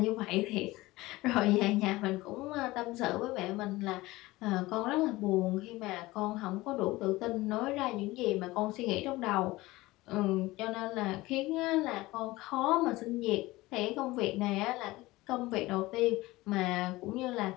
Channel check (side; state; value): right; quieter; 19.5 dB